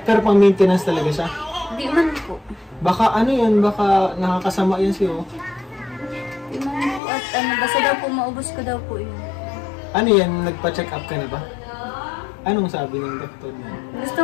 Pero pang maintenance talaga siya. Di man po. Baka ano yan, baka nakakasama yan sa'yo. Di man po. At basta daw po, maubos ko daw po yun. Ano yan, nagpa-check up ka na ba? Anong sabi ng doktor mo? Gusto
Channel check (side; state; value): right; drops out; at 7.0 s